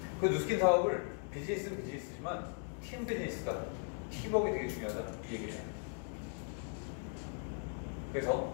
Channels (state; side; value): silent; right; 52 dB below the other